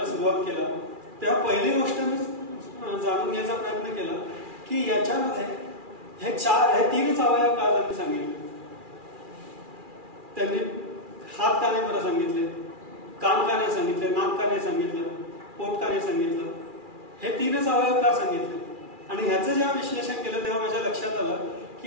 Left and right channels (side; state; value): left; late; 2.4 ms